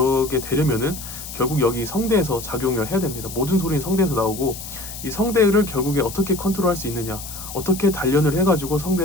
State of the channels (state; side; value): noise; left; hiss, 11 dB below the sound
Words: 되려면은 결국 여기 성대에서 작용을 해야 됩니다. 모든 소리는 성대에서 나오고 이 성대를 결국에 어떻게 컨트롤할 수 있느냐, 어떻게 단련을 해가지고